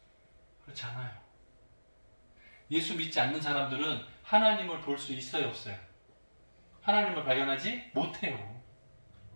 그렇지 않아요. 예수 믿지 않는 사람들은 하나님을 볼 수 있어요, 없어요? 하나님을 발견하지 못해요.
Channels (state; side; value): inverted; both; correlation -1.00